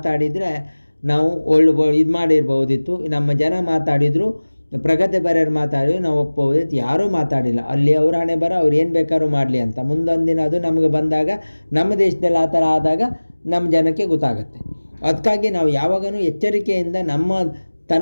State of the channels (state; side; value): inverted; both; correlation -1.00